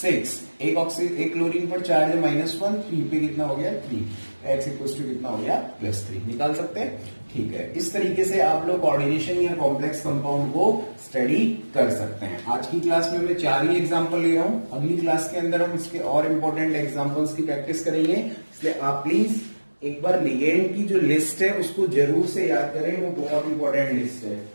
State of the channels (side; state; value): both; inverted; correlation -1.00